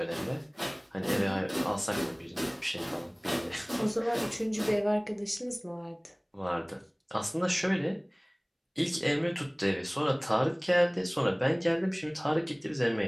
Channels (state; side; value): identical; both; correlation 1.00